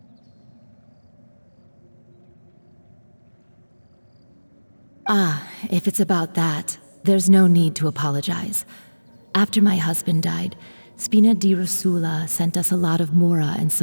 If it's about that, there's no need to apologize. After my husband died, Spina di Rosula sent us a lot of mora and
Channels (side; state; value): both; inverted; correlation -1.00